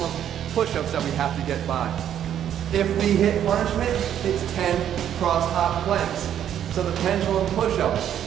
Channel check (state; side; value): quieter; left; 10.1 dB